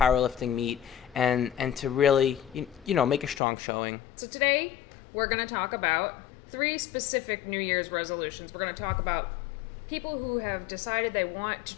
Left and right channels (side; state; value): right; drops out; at 3.4 s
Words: meet and to really, make a strong showing. So today we're going to talk about 3 specific New Year's resolutions. We're going to talk about people who have decided they want to